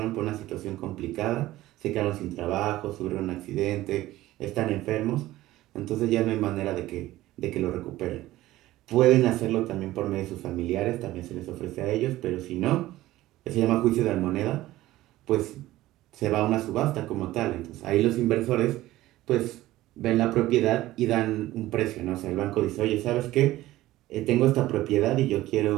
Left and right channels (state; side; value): quieter; left; 16.2 dB